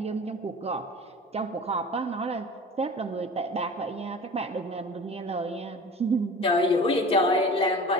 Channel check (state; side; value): normal; both; correlation 0.39